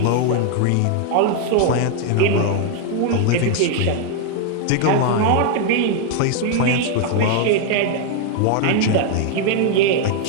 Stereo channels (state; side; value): different; both; correlation 0.00